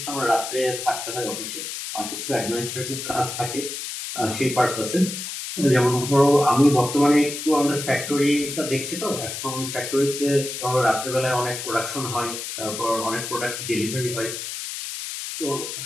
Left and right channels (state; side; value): noise; left; hiss, 6 dB below the sound